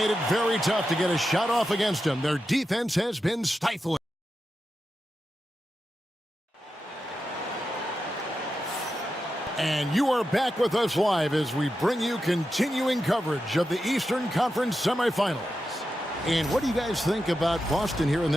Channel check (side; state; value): both; normal; correlation 0.89